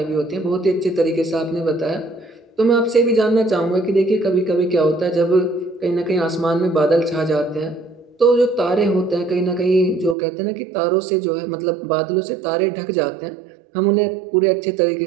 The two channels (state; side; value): drops out; left; at 10.2 s